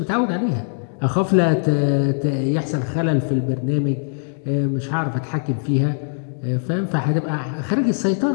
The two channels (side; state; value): right; silent; digital silence